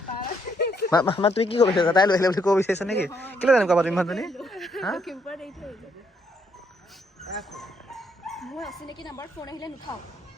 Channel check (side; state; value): both; normal; correlation 0.72